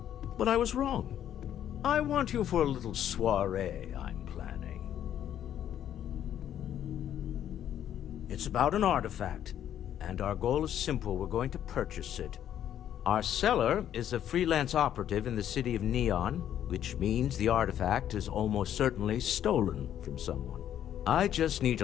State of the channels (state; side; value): quieter; right; 10.5 dB